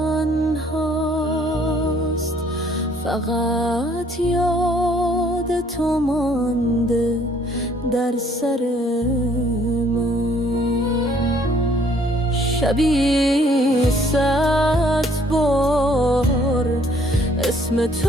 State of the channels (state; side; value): normal; both; correlation 0.62